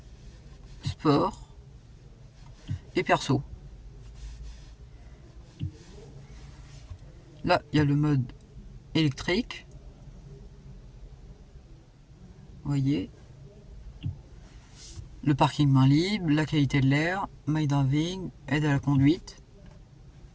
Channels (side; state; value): both; identical; correlation 1.00